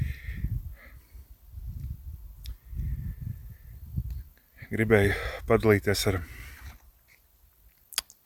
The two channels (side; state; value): both; identical; correlation 1.00